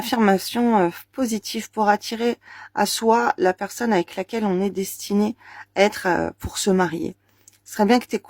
positives pour attirer à soi la personne avec laquelle on est destiné à être pour se marier. Ce serait bien que tu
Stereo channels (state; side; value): identical; both; correlation 1.00